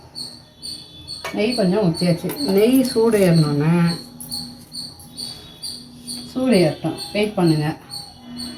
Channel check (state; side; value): identical; both; correlation 1.00